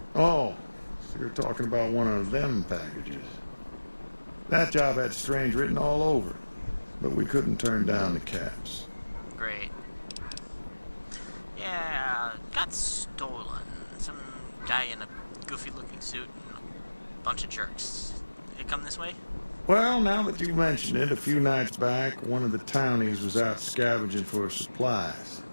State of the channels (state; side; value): inverted; both; correlation -1.00